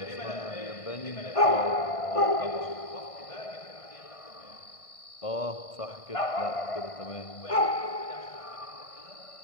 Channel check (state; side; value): late; right; 1.5 ms